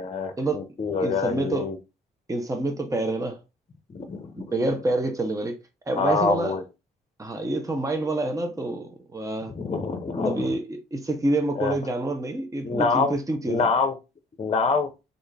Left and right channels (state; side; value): normal; both; correlation 0.57